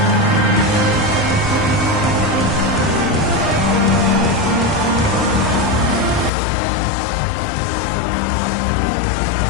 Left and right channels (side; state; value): right; drops out; at 6.3 s